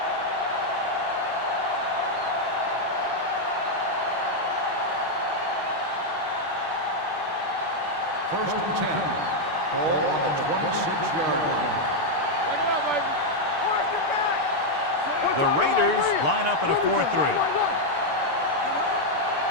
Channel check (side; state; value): left; late; 6.8 ms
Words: First and 10. Ball on the 26-yard line. Take it up, baby. Force it back. The Raiders line up in a 4-3.